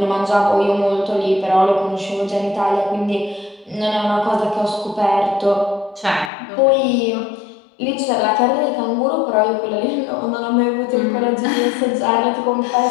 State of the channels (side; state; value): right; drops out; at 6.3 s